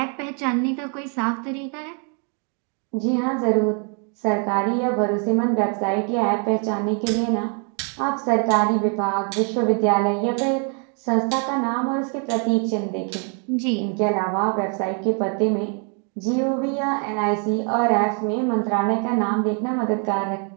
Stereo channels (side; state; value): left; quieter; 39.5 dB